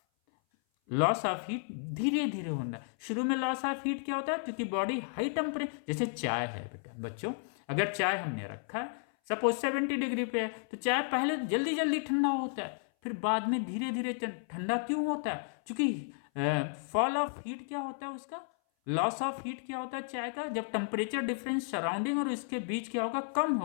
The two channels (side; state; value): right; silent; 56 dB below the other